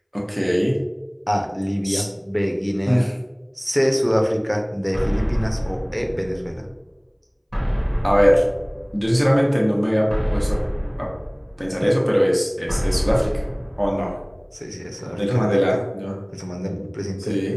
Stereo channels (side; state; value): both; identical; correlation 1.00